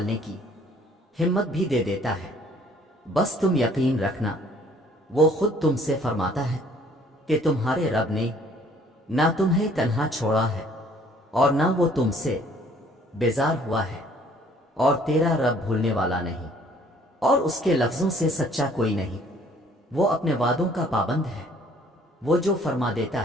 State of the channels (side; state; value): both; normal; correlation 0.58